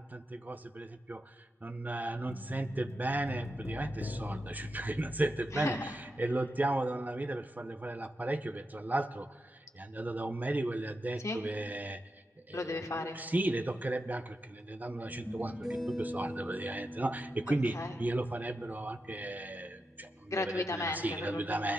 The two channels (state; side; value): normal; both; correlation 0.87